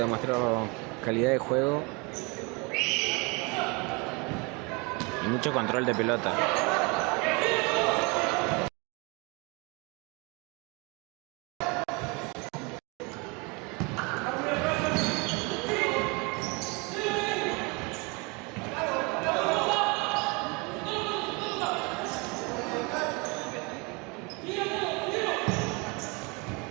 calidad de juego y mucho control de pelota.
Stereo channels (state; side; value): quieter; left; 29.2 dB